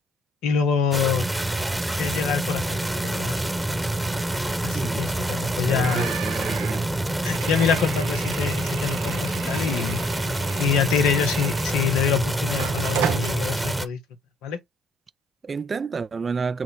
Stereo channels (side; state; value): both; normal; correlation 0.68